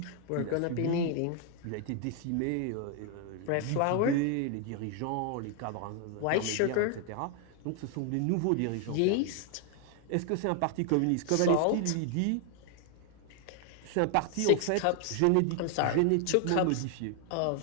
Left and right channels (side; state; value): both; different; correlation 0.00